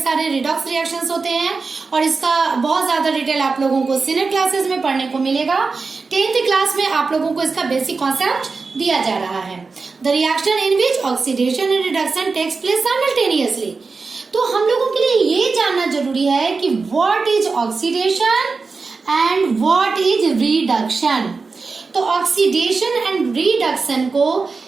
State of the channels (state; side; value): quieter; left; 4.3 dB